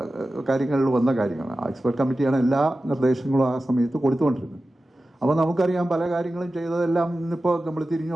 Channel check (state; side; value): normal; both; correlation 0.94